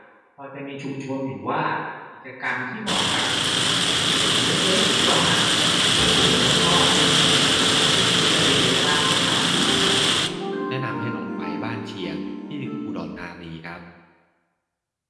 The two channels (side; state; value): both; identical; correlation 1.00